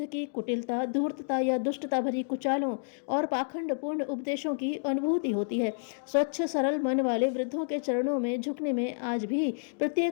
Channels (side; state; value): right; silent; digital silence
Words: की कुटिलता, धूर्तता या दुष्टता भरी कुचालों और पाखंडपूर्ण उपदेशों की अनुभूति होती है। स्वच्छ सरल मन वाले वृद्धों के चरणों में झुकने में आज भी